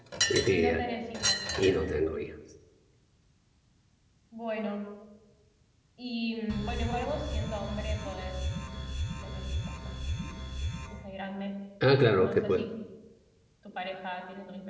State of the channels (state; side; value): identical; both; correlation 1.00